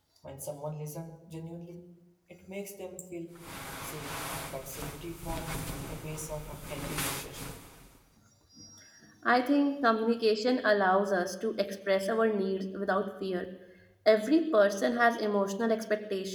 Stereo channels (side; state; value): both; identical; correlation 1.00